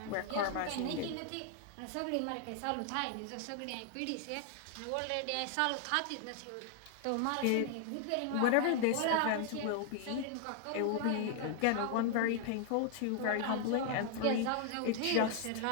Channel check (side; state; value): both; different; correlation 0.00